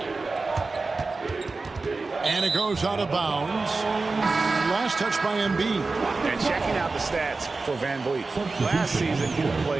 And it goes out of bounds. Last touch by Embiid. And checking out the stats for Van Vliet. Last season, he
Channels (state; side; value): quieter; left; 3.8 dB